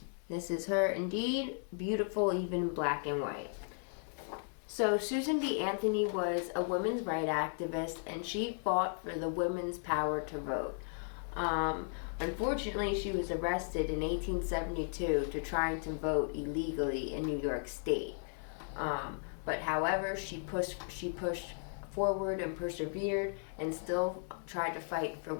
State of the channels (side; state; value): right; silent; 54 dB below the other